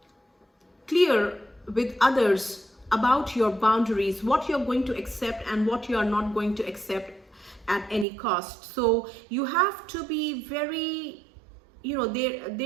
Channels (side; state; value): left; drops out; at 8.1 s